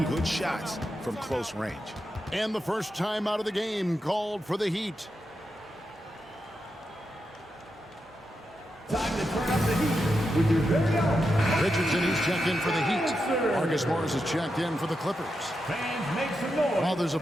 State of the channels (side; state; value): both; normal; correlation 0.87